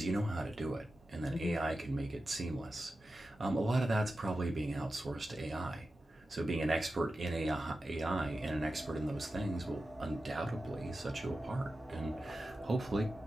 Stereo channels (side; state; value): both; normal; correlation 0.93